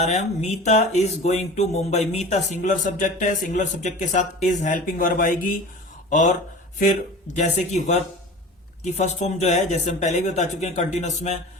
रहे हैं हम। Meeta is going to Mumbai. Meeta singular subject है, सिंगुलर सब्जेक्ट के साथ इज हेल्पिंग वर्ब आएगी और फिर जैसे कि वर्ब की फर्स्ट फॉर्म जो है, जैसे हम पहले भी बता चुके हैं कंटिन्यूअस में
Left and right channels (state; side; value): normal; both; correlation 0.37